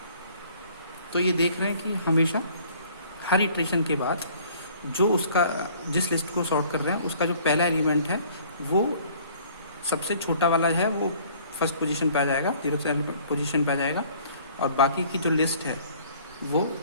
तो ये देख रहे हैं कि हमेशा हर इटरेशन के बाद जो उसका जिस लिस्ट को सॉर्ट कर रहे हैं उसका जो पहला एलिमेंट है वो सबसे छोटा वाला है वो फर्स्ट पोजीशन पे आ जाएगा, जीरोथ पोजीशन पे आ जाएगा। और बाकी की जो लिस्ट है वो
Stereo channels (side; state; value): both; inverted; correlation -0.55